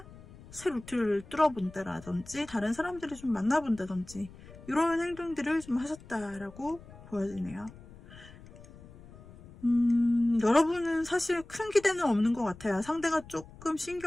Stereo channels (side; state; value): left; noise; rumble, 19 dB below the sound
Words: 새 루트를 뚫어본다라든지 다른 사람들을 좀 만나본다든지 이런 행동들을 좀 하셨다라고 보여지네요. 여러분은 사실 큰 기대는 없는 것 같아요. 상대가 조금